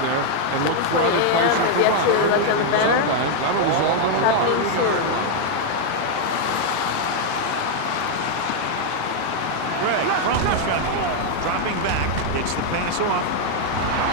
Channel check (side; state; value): both; different; correlation 0.00